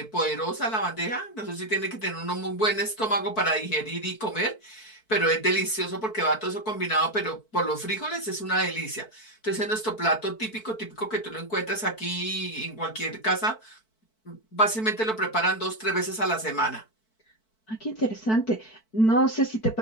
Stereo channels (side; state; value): right; late; 4.5 ms